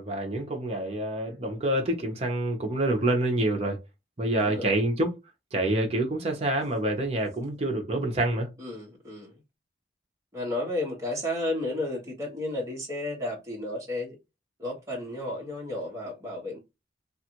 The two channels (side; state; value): both; normal; correlation 0.39